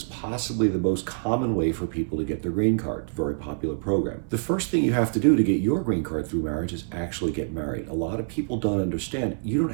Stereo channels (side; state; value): left; silent; 61 dB below the other